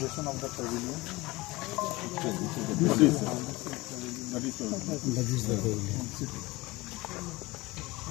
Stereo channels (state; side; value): quieter; right; 21.6 dB